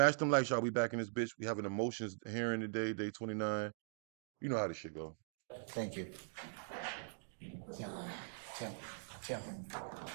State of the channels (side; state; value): left; silent; digital silence